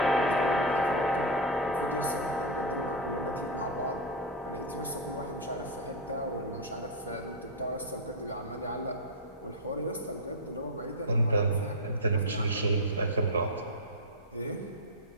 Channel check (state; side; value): normal; both; correlation 0.02